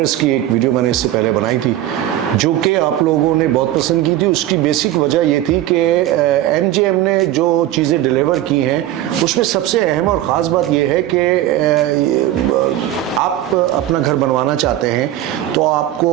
की एक वीडियो मैंने इससे पहले बनाई थी जो कि आप लोगों ने बहुत पसंद की थी। उसकी बेसिक वजह ये थी कि MJM ने जो चीज़ें डिलीवर की हैं उसमें सबसे अहम और ख़ास बात यह है कि आप अपना घर बनवाना चाहते हैं तो आपको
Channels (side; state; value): left; quieter; 13.5 dB